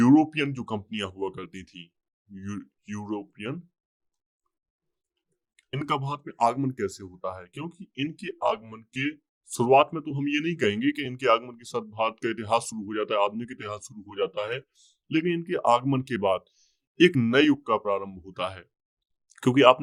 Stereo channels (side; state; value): both; identical; correlation 1.00